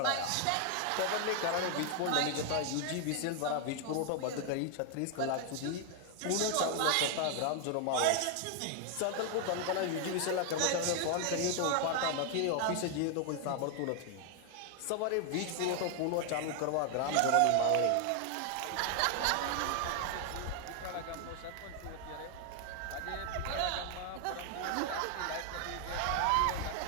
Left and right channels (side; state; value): both; different; correlation 0.00